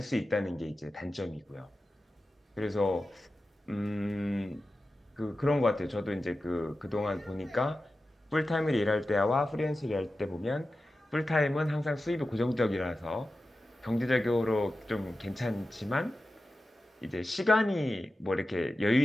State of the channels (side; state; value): both; normal; correlation 0.93